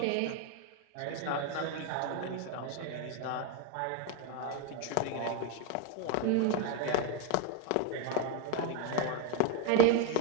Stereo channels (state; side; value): different; both; correlation 0.02